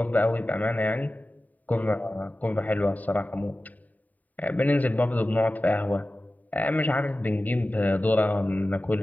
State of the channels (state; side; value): late; right; 0.077 ms